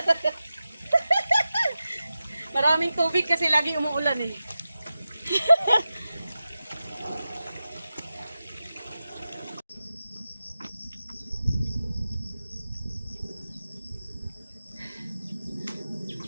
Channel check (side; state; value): both; inverted; correlation -0.94